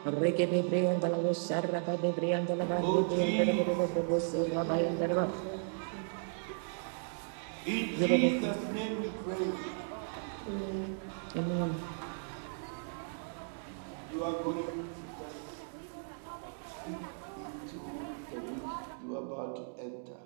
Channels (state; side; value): silent; left; digital silence